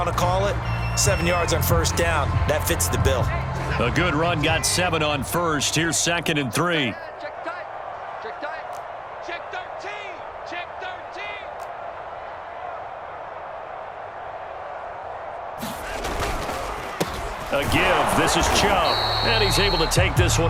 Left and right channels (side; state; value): both; identical; correlation 1.00